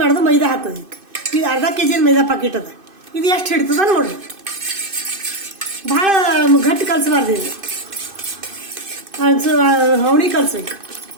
ಮಾಡೋದು, ಮೈದಾ ಹಾಕೋದು. ಇದು ಅರ್ಧ kg ಮೈದಾ ಪಾಕಿಟ್ ಅದ. ಇದು ಎಷ್ಟು ಹಿಡಿತದ ನೋಡ್ರಿ. ಭಾಳ ಗಟ್ಟಿ ಕಲಿಸಬಾರ್ದು, ಇದು ಹವಣಿ ಕಲಿಸ್ಬೇಕು.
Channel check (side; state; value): left; late; 2.6 ms